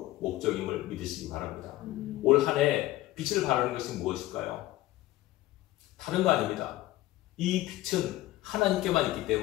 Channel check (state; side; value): quieter; right; 16.6 dB